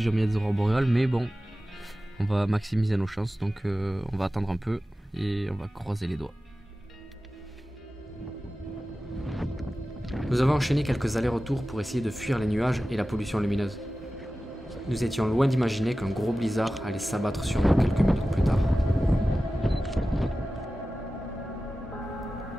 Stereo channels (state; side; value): normal; both; correlation 0.95